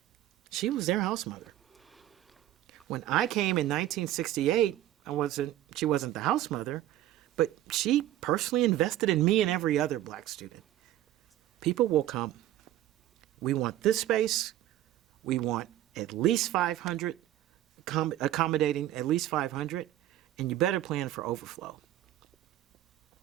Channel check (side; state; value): left; quieter; 13.4 dB